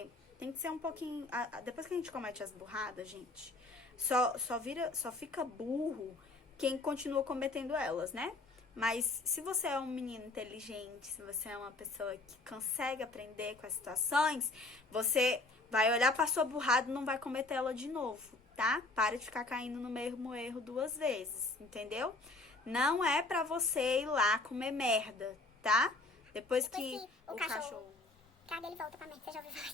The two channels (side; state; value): right; quieter; 3.1 dB